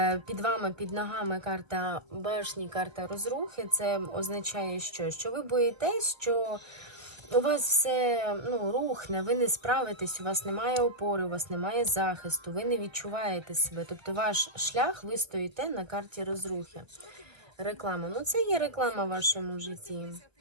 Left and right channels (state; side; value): late; left; 1.1 ms